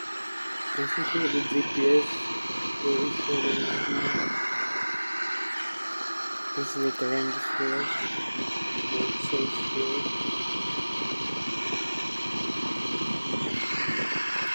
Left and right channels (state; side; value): inverted; both; correlation -1.00